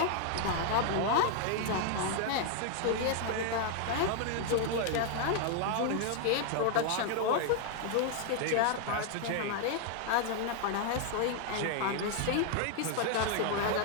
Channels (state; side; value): different; both; correlation 0.00